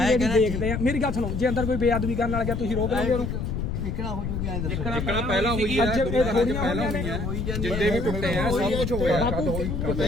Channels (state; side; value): noise; left; rumble, 3 dB below the sound